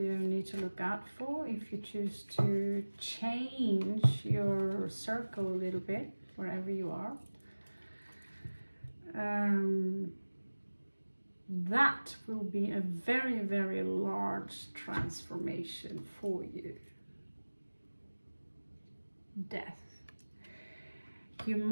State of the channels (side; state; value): both; inverted; correlation -1.00